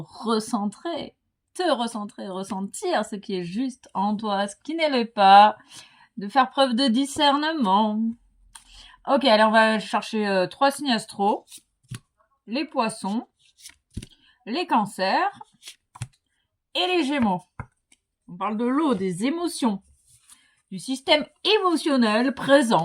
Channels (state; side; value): identical; both; correlation 1.00